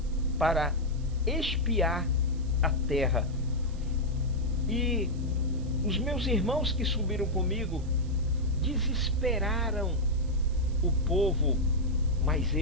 para espiar a terra. E os meus irmãos que subiram comigo desesperaram o povo, mas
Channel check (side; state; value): right; noise; hiss, 25 dB below the sound